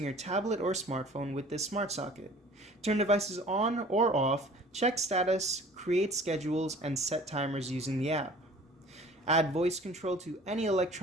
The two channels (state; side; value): normal; both; correlation 0.48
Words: your tablet or smartphone with this smart socket. Turn devices on or off, check status, create schedules, and set timers using the app. Add voice control to any